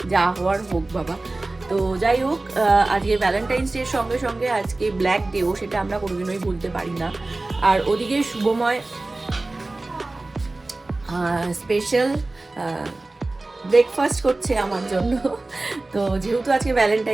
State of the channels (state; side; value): quieter; left; 3.0 dB